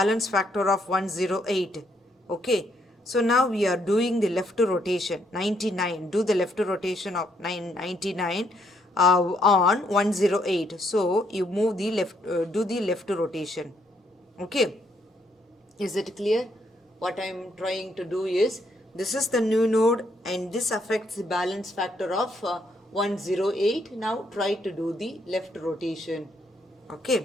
factor of 108. Okay, so now we are doing the left rotation, 99. Do the left rotation of 99 on 108. So you move the left, do the left rotation. Okay, is it clear? What I am trying to do is, this is the new node and this affects the balance factor of 108. Now try to do the left rotation.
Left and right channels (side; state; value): both; normal; correlation 0.72